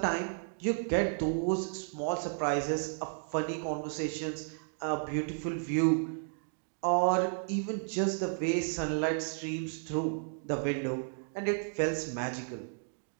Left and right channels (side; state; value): left; silent; digital silence